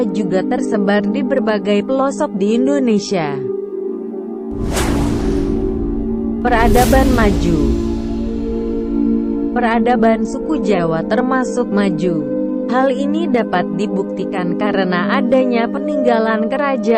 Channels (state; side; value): identical; both; correlation 1.00